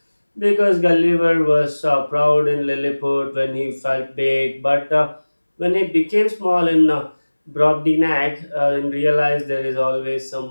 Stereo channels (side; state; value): both; inverted; correlation -1.00